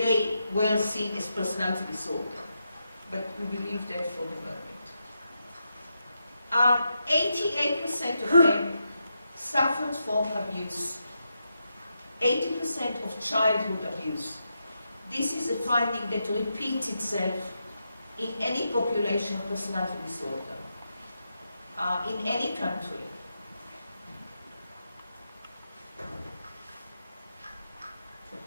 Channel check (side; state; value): both; inverted; correlation -0.85